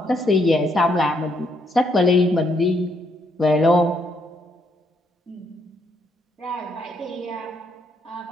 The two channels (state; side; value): normal; both; correlation 0.74